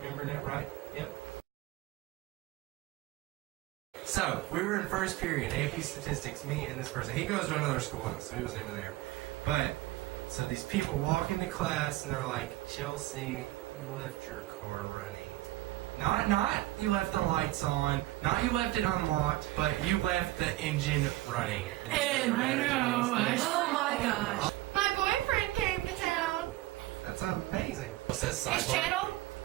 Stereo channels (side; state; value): left; quieter; 17.5 dB